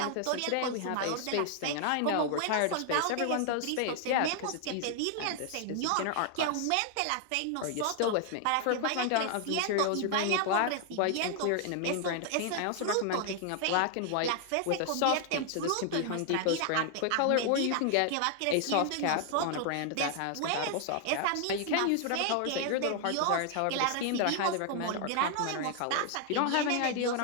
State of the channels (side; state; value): both; different; correlation 0.00